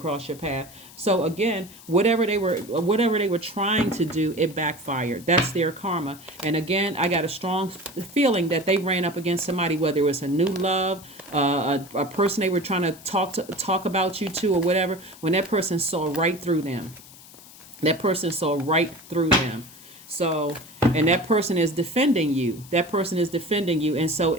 your path. So again, whatever they were trying to do, it backfired. That's their karma. And again, I got a strong feeling that they ran up against somebody, whether it was a new love, a person they were trying to talk about you to, or whatever. When that person saw right through them, So, and that person is defending you. And so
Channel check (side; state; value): left; noise; hiss, 20 dB below the sound